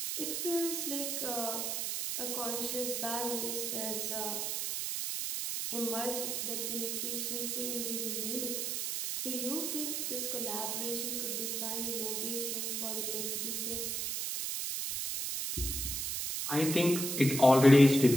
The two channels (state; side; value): noise; right; hiss, 1 dB below the sound